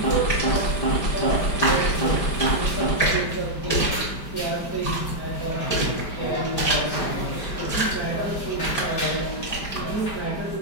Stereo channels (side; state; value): right; late; 5.1 ms